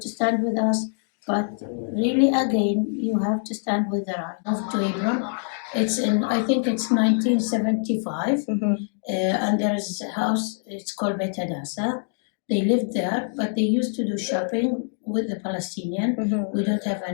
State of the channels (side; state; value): right; silent; digital silence